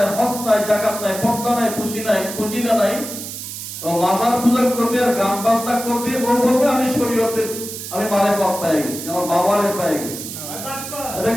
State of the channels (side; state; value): right; noise; hiss, 9 dB below the sound